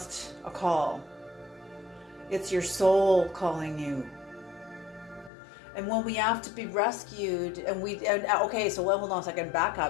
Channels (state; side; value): drops out; right; at 5.3 s